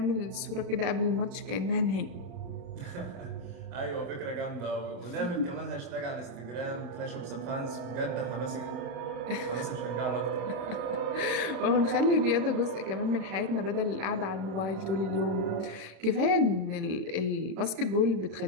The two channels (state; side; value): late; left; 35 ms